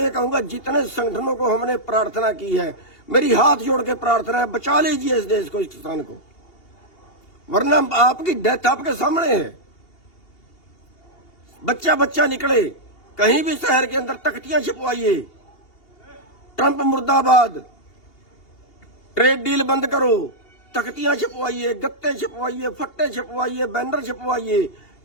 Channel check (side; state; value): right; late; 2.8 ms